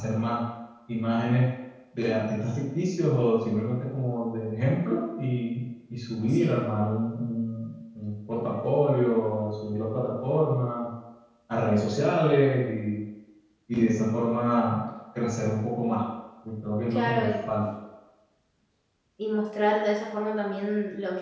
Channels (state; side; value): identical; both; correlation 1.00